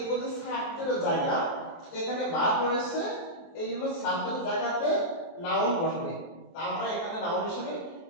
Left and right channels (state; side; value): late; right; 24 ms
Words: যে সাবজেক্টের জায়গা এখানে ভার্ব রয়েছে, এই জন্য সাবজেক্টের জায়গাতে নাউন বসবে, তা আমরা এখানে নাউন হিসেবে